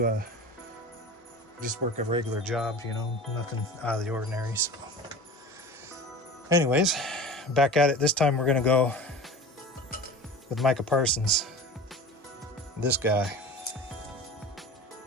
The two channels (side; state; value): both; normal; correlation 0.36